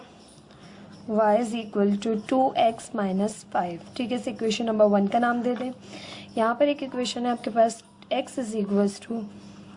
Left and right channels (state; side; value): identical; both; correlation 1.00